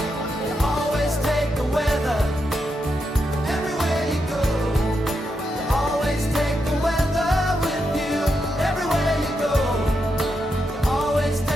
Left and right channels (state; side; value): normal; both; correlation 0.84